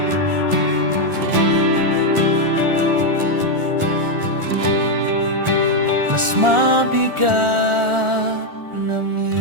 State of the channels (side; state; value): left; late; 1.4 ms